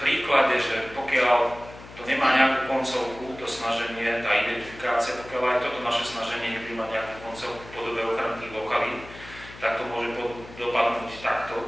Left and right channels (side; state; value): left; noise; hum, 17 dB below the sound